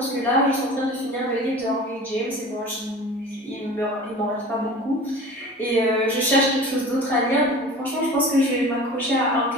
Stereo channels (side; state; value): both; normal; correlation 0.39